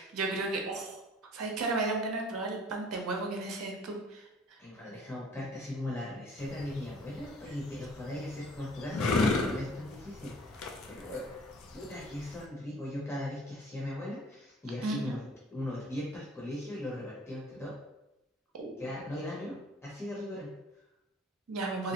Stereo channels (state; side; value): normal; both; correlation 0.51